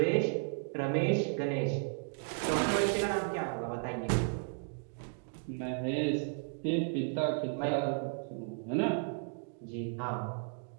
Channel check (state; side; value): silent; left; 55 dB below the other